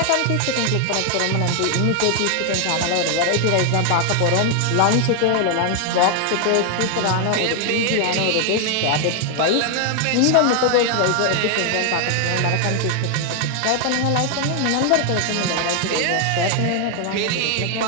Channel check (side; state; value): both; different; correlation 0.00